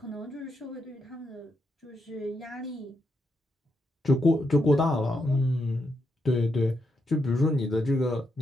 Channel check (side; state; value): both; normal; correlation 0.81